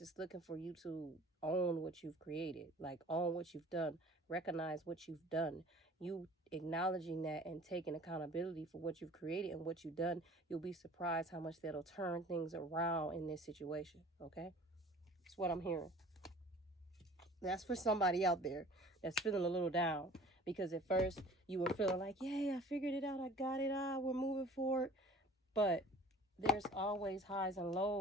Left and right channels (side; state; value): both; normal; correlation 0.47